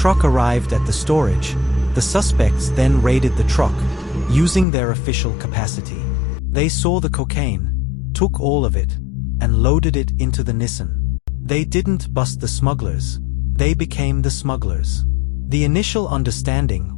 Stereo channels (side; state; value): right; drops out; at 4.7 s